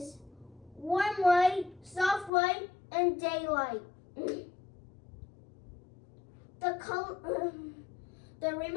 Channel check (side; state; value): right; drops out; at 2.3 s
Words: warm white, soft white, and daylight. The